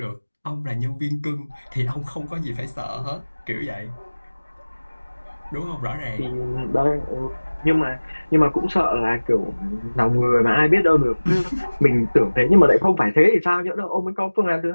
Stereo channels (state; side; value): inverted; both; correlation -1.00